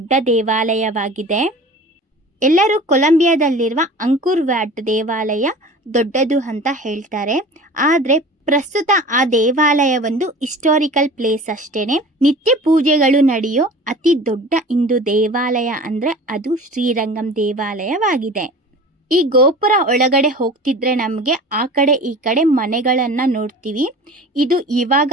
ದೇವಾಲಯವಾಗಿದೆ. ಎಲ್ಲರೂ ಕೊಲಂಬಿಯಾದಲ್ಲಿರುವ ಅಂಕುರ್ ವ್ಯಾಟ್ ದೇವಾಲಯ ದೊಡ್ಡದು ಅಂತ ಹೇಳ್ತಾರೆ. ಆದರೆ ಪ್ರಸ್ತುತ ಆ ದೇವಾಲಯ ಒಂದು ಹಿಸ್ಟಾರಿಕಲ್ ಪ್ಲೇಸ್ ಅಷ್ಟೇನೆ. ನಿತ್ಯ ಪೂಜೆಗಳು ನಡೆಯೋ ಅತಿ ದೊಡ್ಡ ಹಿಂದೂ ದೇವಾಲಯ ಅಂದರೆ ಅದು ಶ್ರೀರಂಗಂ ದೇವಾಲಯವಾಗಿದೆ. ಈ ಗೋಪುರ ಒಳಗಡೆ ಹೋಗ್ತಿದ್ರೆ ನಮಗೆ ಆ ಕಡೆ ಈ ಕಡೆ ಮನೆಗಳನ್ನು ನೋಡ್ತೀವಿ. ಇದು ಇವಾಗ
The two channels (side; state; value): both; normal; correlation 0.39